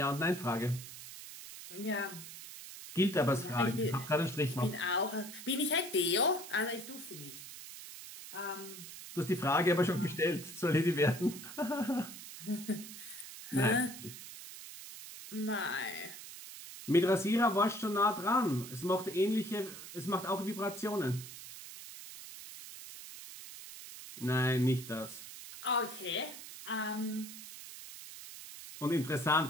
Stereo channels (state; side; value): noise; right; hiss, 13 dB below the sound